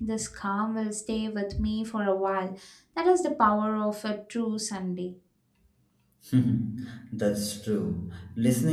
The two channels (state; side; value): identical; both; correlation 1.00